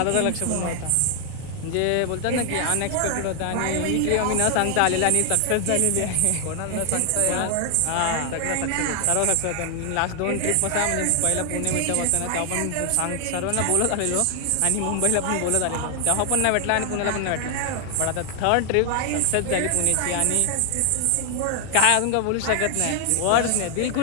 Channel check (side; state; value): both; different; correlation 0.00